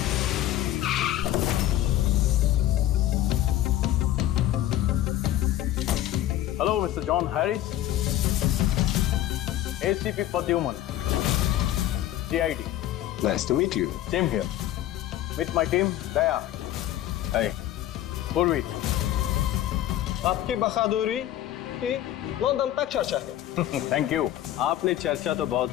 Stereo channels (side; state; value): right; quieter; 13.2 dB